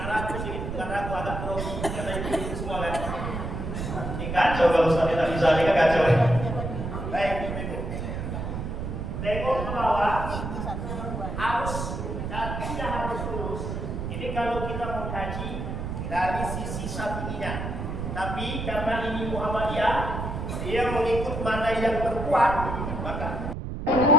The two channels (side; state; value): right; noise; rumble, 5 dB below the sound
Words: ragu agak grogi, karena itu semua kan. Ini kacau kalau Ustaz tidak bisa, ini kan kacau. Baik, tengok ke bawah, harus kakinya harus lurus. Ini kalau kita mau kaji dari sisi Syafi'inya. Tapi karena ini Muhammadiyah, dia mengikut mana yang terkuat, maka